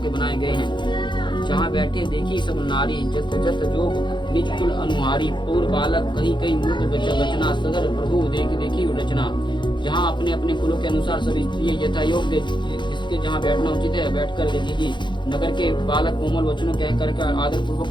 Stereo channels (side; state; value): right; late; 0.23 ms